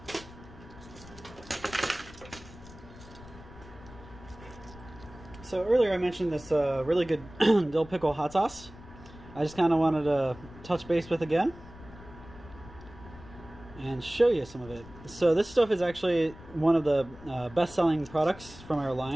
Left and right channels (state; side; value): noise; left; rumble, 18 dB below the sound